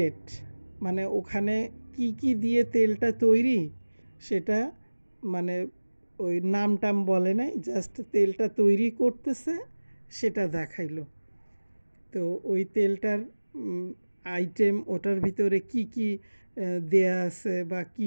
মানে ওখানে কি কি দিয়ে তেলটা তৈরি সেটা মানে ওই নাম টাম বলে নাই, জাস্ট তেলটা তৈরি করতেছে সেটা দেখাইলো। তো ওই তেলটার আইটেম, ওটার ভিতরে কি কি দেয়া আছে বা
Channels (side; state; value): both; inverted; correlation -1.00